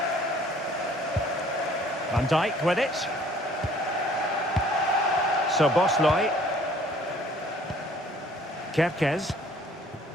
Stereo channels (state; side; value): normal; both; correlation 0.56